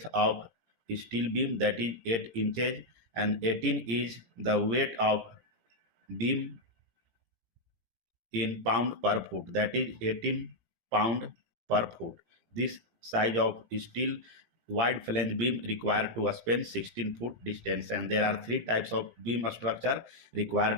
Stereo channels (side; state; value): left; late; 18 ms